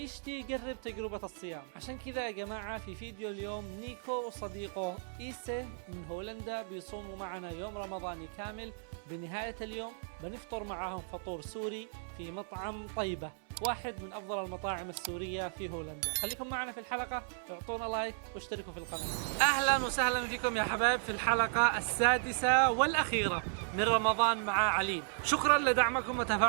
يجرب تجربة الصيام. عشان كذا يا جماعة في فيديو اليوم نيكو وصديقه إيسي من هولندا بيصوموا معنا يوم رمضاني كامل. بنهاية اليوم بنفطر معهم فطور سوري في مطعم طيبة، واحد من أفضل المطاعم السورية في هولندا. خليكم معنا في الحلقة، اعطونا لايك واشتركوا في القناة. أهلا وسهلا فيكم يا حبايب في الحلقة السادسة والأخيرة من رمضان مع عليم. شكرا لدعمكم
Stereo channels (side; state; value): left; silent; 54 dB below the other